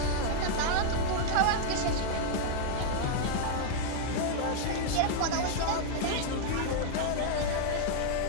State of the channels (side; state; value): both; different; correlation -0.01